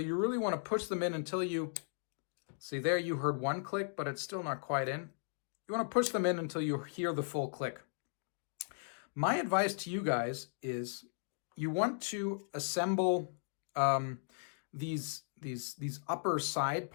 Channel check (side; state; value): right; silent; digital silence